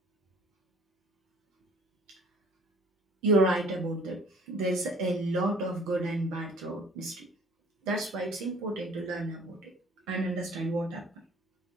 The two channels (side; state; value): both; normal; correlation 0.53